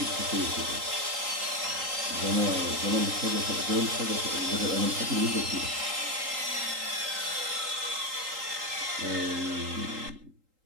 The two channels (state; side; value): late; left; 3.8 ms